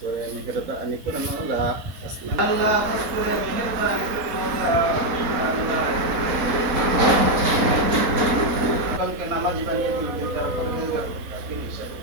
করে মেহেরবানি করে মওলা, আল্লাহ খাস করে মেহেরবানি করে মওলা, আল্লাহ কালকে নামাজি বানিয়ে দিন, তার পরহেজগার মুত্তাকিন হিসাবে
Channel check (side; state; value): left; late; 4.2 ms